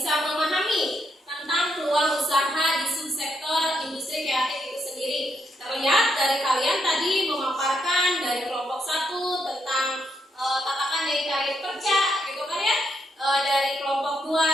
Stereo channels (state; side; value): normal; both; correlation 0.78